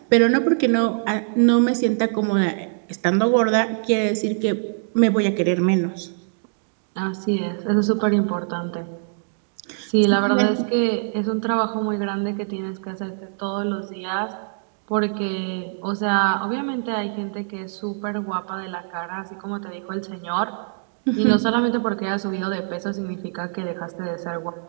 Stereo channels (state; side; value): silent; left; digital silence